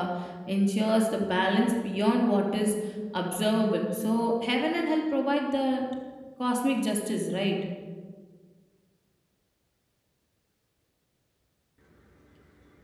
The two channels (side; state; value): both; identical; correlation 1.00